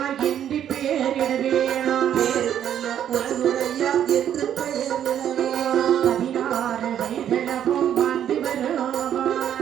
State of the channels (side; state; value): left; quieter; 10.0 dB